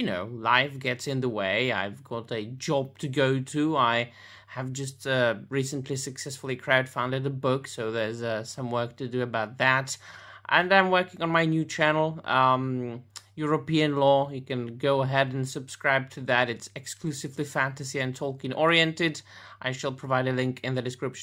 know, life gets in the way. I've got a job to go to. I have just recently successfully crowdfunded a book, so there's some work to do about that. And I'm working on my new channel, European Lore. You can go ahead and subscribe to that. It's exclusively fantasy and Tolkien oriented. I shall provide a link in the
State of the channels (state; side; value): identical; both; correlation 1.00